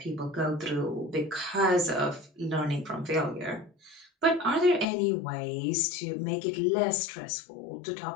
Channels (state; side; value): drops out; right; at 4.9 s